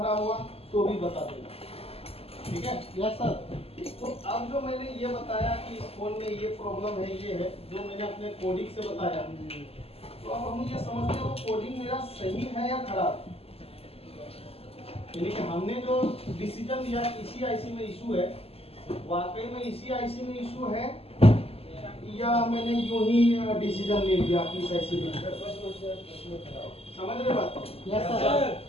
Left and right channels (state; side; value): late; right; 0.29 ms